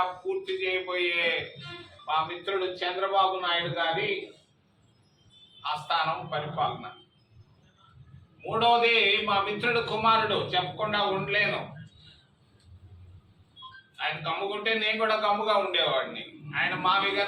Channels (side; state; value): both; identical; correlation 1.00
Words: పూర్తి చేయబోయే మా మిత్రుడు చంద్రబాబు నాయుడు గారి ఆస్థానం పరిపాలన. మూడవది, మా మిత్రుడు కుమారుడు, చెప్పకుండా ఉండలేను. ఆయన గమ్ముకుంటే నేను కూడా గమ్ముగా ఉండేవాడిని. ఆయన